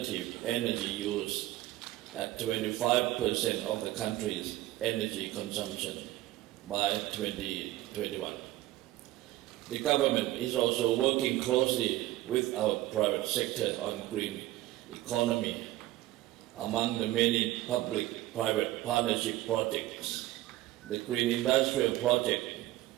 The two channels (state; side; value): quieter; left; 16.2 dB